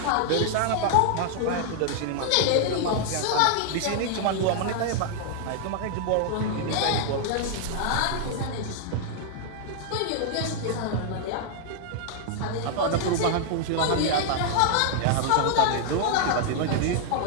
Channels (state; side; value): different; both; correlation 0.00